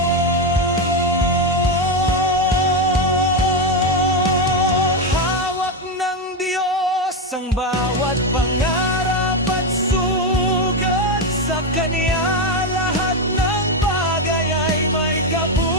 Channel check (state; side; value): normal; both; correlation 0.09